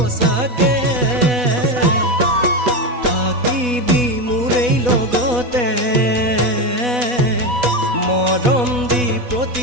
থাকিবি মোৰেই লগতে মৰম দি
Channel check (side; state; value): left; late; 4.1 ms